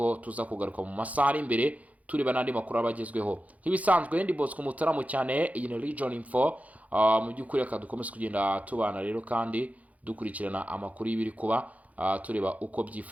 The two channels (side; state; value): left; late; 0.070 ms